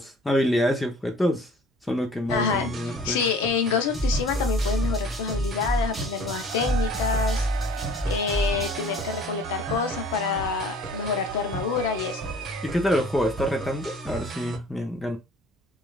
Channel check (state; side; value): normal; both; correlation 0.49